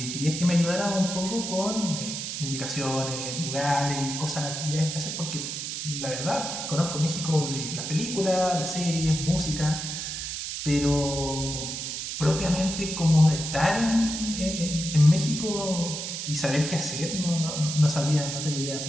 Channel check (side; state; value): right; noise; hiss, 5 dB below the sound